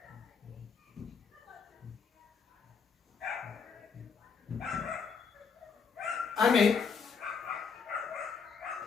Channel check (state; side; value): quieter; right; 5.8 dB